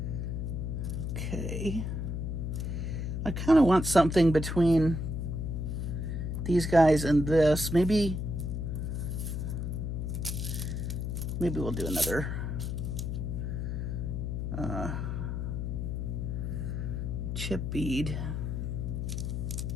Okay. I kind of want something between these guys and this. Maybe we'll do another chip bead.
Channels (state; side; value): noise; left; hum, 2 dB below the sound